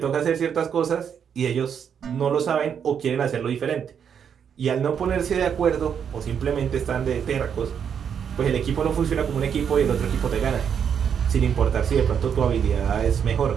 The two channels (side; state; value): left; quieter; 7.7 dB